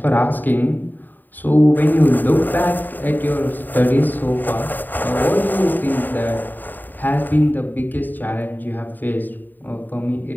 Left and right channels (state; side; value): late; right; 0.089 ms